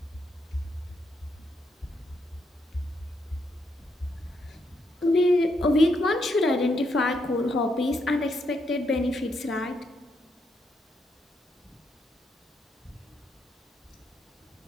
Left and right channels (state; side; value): normal; both; correlation 0.79